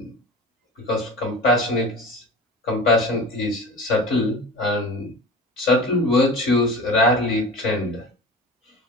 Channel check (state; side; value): normal; both; correlation 0.34